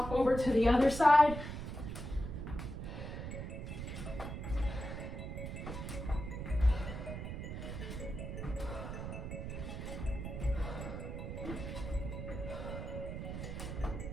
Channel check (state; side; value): noise; right; rumble, 6 dB below the sound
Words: over to the other side.